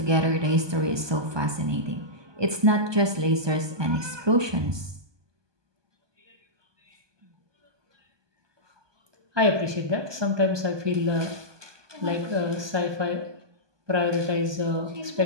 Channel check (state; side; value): late; left; 1.2 ms